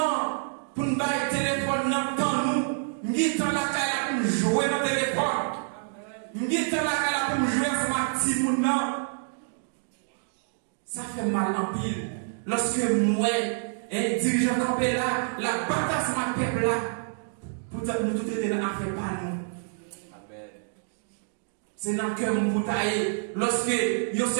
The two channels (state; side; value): silent; left; digital silence